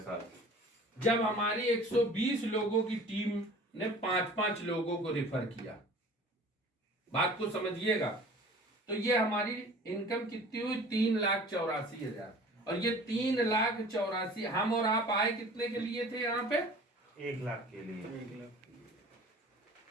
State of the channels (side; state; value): both; normal; correlation 0.44